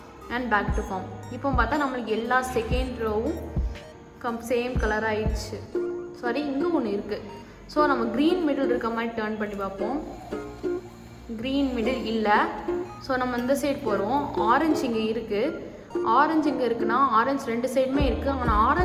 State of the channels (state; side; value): identical; both; correlation 1.00